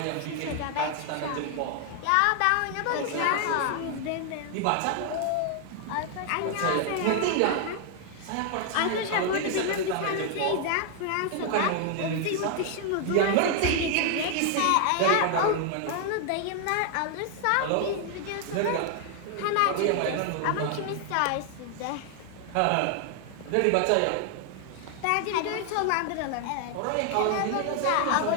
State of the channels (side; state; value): both; different; correlation 0.00